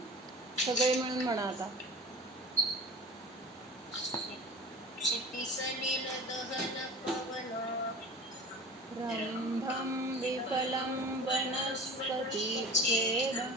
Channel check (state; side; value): normal; both; correlation 0.37